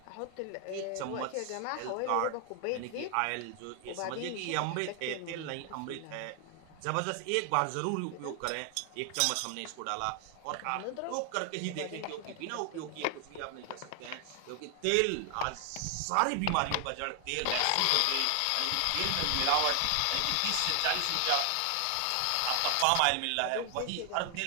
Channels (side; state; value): both; different; correlation 0.00